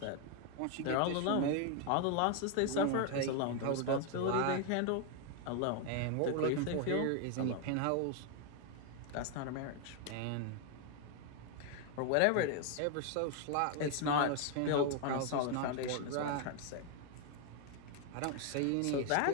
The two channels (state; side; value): different; both; correlation 0.01